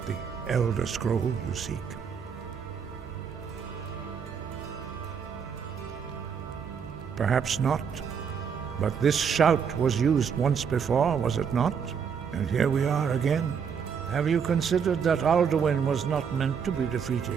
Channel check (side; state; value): left; quieter; 6.9 dB